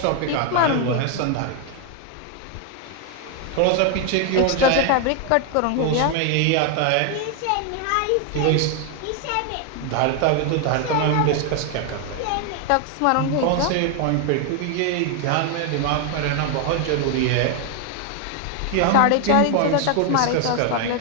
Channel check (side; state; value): both; different; correlation 0.01